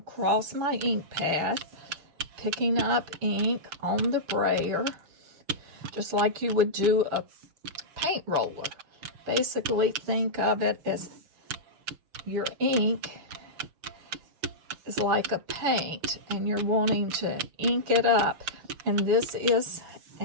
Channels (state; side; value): late; left; 6.6 ms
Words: my ink pad, picking up ink on the brayer, just like you would do a paint roller. Basically, think of it as your ink is like a paint, and you're wanting to ink it up. And this is